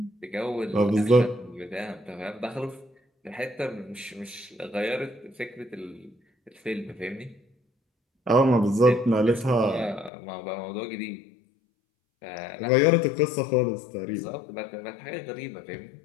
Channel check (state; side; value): drops out; right; at 10.1 s